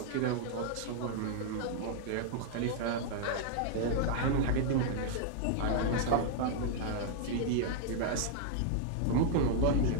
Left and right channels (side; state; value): both; different; correlation -0.01